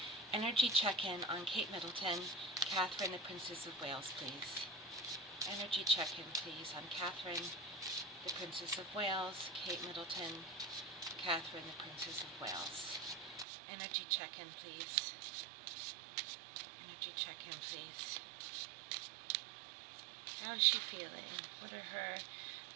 Energy check-in on Kate Middleton, Catherine, the Princess of Wales, please. Energy check-in, please, on Catherine, the Princess of Wales, Kate Middleton, Catherine, the Princess of Wales. Energy check-in, please. Energy check-in, please. How is she feeling? What are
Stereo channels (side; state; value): left; drops out; at 13.5 s